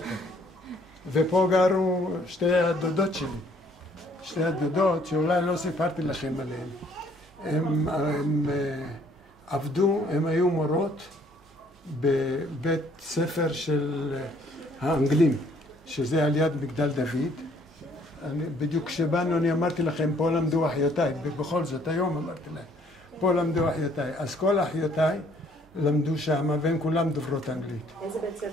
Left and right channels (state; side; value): normal; both; correlation 0.62